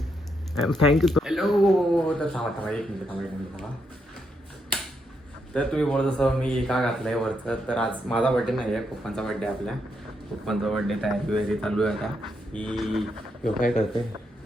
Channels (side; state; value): both; normal; correlation 0.79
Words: थँक्यू. हॅलो. तर थांबा एक मिनिट थांबा. तर तुम्ही बोलत असं मी का घातलंय वरचं, तर आज माझा बड्डे नाही आहे, पप्पांचा बड्डे आहे. आपल्या पप्पांचा बड्डे तयारी वगैरे चालू आहे आता. की यो काय करते